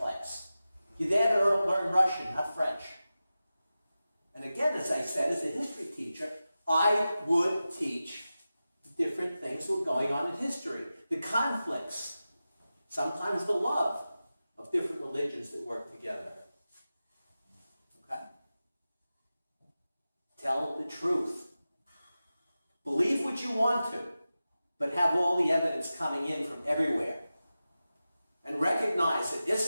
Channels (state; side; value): inverted; both; correlation -0.94